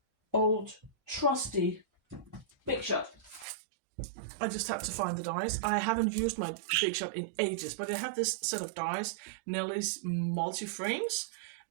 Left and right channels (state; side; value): drops out; left; at 3.5 s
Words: old trusty Big Shot. I just had to find the dies. I haven't used my Big Shot in ages, but I have this set of dies, Nelly's multi-frames,